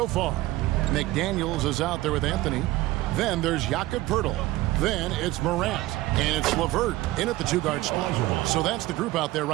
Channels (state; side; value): quieter; left; 17.6 dB